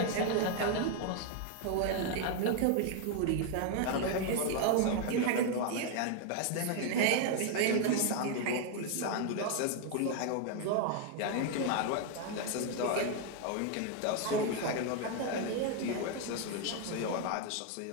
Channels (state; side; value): different; both; correlation 0.01